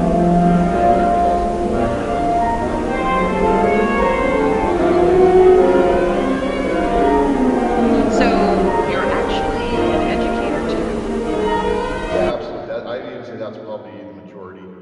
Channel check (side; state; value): both; identical; correlation 1.00